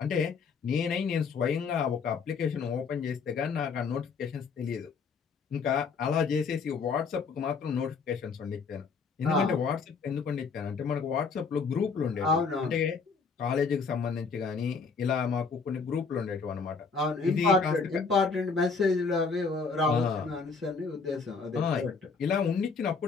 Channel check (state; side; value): quieter; right; 5.1 dB